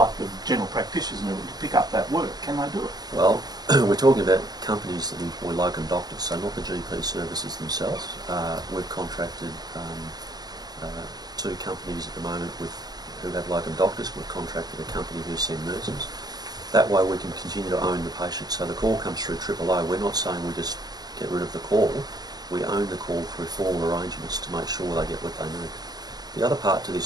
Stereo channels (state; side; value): late; left; 0.19 ms